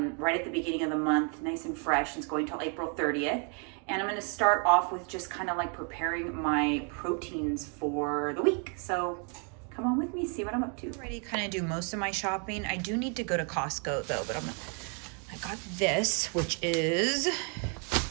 at the beginning of the month, nice and fresh. It's going till April 30th. And I'm gonna start off with just kind of like preparing my proteins for the week. So come on with me, see what I'm up to. Already kind of do most of my shopping. I do need to go to Costco though, but I got this, which is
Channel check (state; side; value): quieter; left; 38.7 dB